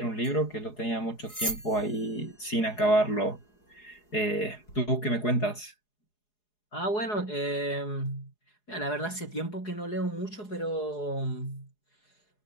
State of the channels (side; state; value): right; late; 4.8 ms